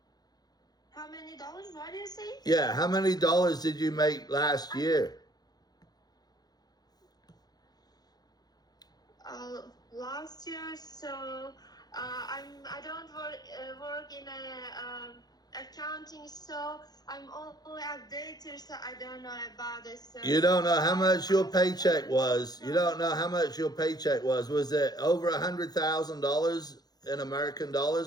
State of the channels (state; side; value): late; right; 0.19 ms